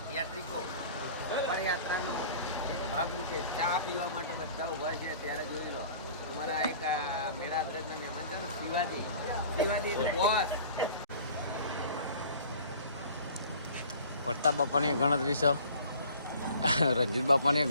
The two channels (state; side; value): inverted; both; correlation -0.47